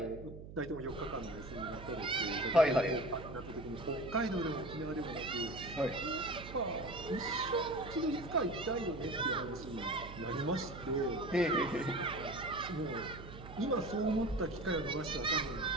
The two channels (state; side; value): noise; right; hum, 13 dB below the sound